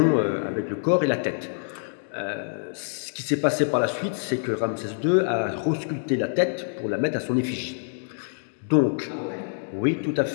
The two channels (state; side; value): silent; right; digital silence